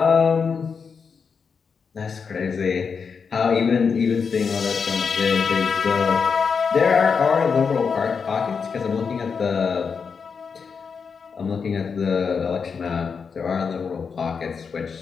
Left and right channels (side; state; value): right; quieter; 5.8 dB